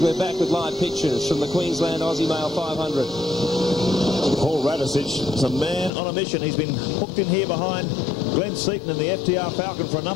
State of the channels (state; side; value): drops out; right; at 5.9 s